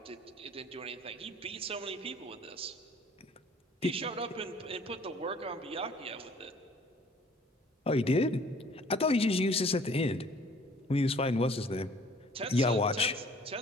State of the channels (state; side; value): normal; both; correlation 0.54